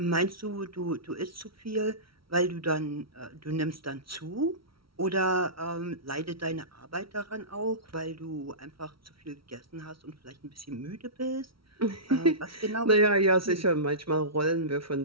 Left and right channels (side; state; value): left; late; 0.75 ms